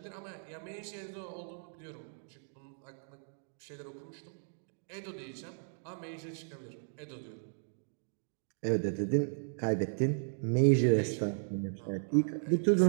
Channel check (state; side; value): silent; left; digital silence